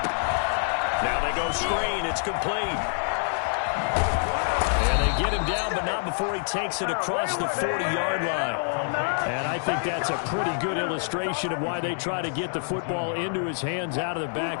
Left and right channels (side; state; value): right; silent; digital silence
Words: Now they go screen. It's complete. And they get him down, but not before he takes it across the 40-yard line. And I think that's a pretty good illustration of why they try to get the football into his hands out of the